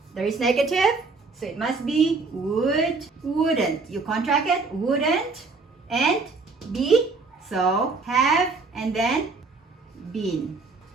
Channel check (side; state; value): left; quieter; 4.0 dB